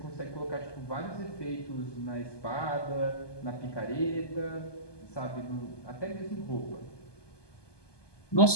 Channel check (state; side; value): late; right; 1.2 ms